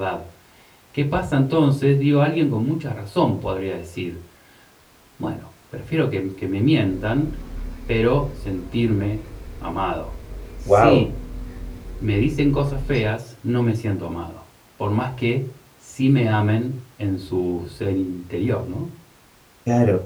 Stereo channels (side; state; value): both; identical; correlation 1.00